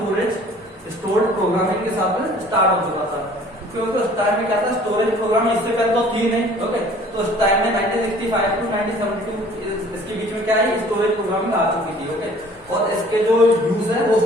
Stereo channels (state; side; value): normal; both; correlation 0.52